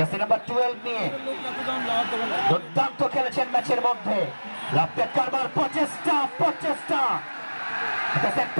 number 12 নিয়ে দুর্দান্ত খেলেছেন ম্যাচের মধ্যে। লাভপেট কারবার প্রচেষ্টা সেট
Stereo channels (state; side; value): inverted; both; correlation -1.00